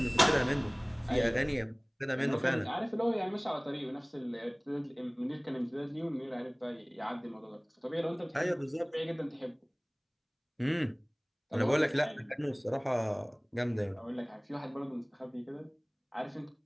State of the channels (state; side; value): identical; both; correlation 1.00